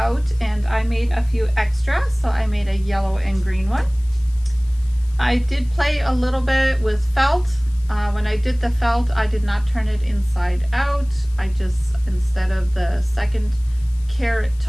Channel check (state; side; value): noise; left; hiss, 26 dB below the sound